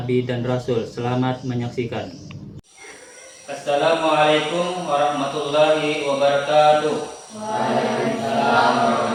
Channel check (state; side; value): identical; both; correlation 1.00